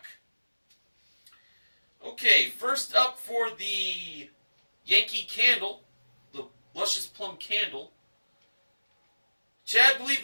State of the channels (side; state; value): both; inverted; correlation -1.00